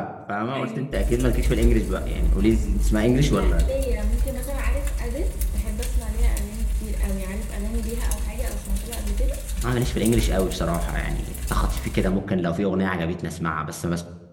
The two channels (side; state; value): both; identical; correlation 1.00